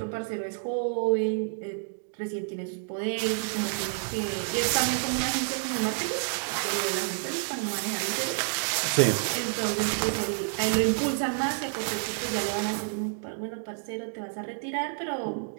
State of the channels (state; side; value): silent; left; digital silence